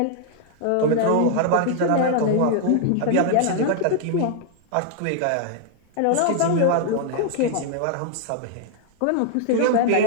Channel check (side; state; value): both; different; correlation 0.00